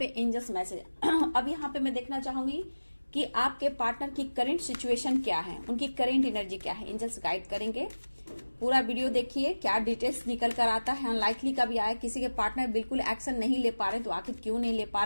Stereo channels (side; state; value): both; inverted; correlation -1.00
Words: एंजल्स मैसेज अब यहाँ पे मैं देखना चाहूंगी कि आपके पार्टनर की करंट सिचुएशन क्या है, उनकी करंट एनर्जी क्या है। एंजल्स गाइड करेंगे। पूरा वीडियो देखिए, क्या डिटेल्स निकल कर आता है। अनलाइकली का भी आया, किसी के पार्टनर बिल्कुल एक्शन नहीं ले पा रहे, तो आखिर क्यों नहीं ले पा